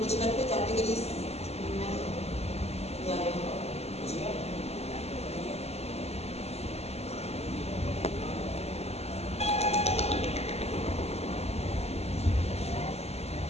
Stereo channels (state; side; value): late; right; 0.30 ms